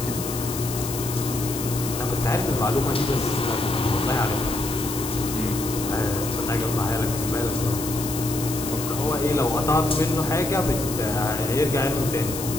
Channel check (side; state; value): left; noise; hiss, 7 dB below the sound